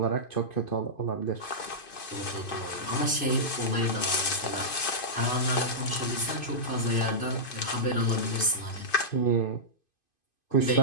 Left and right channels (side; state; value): right; late; 2.5 ms